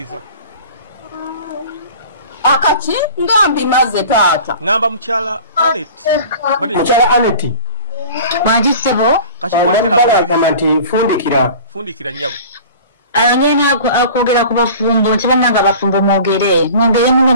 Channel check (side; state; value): both; inverted; correlation -0.41